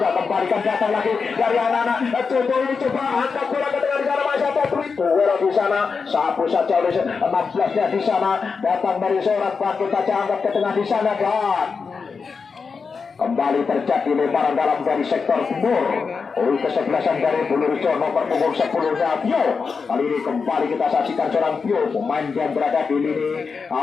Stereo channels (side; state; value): right; quieter; 5.2 dB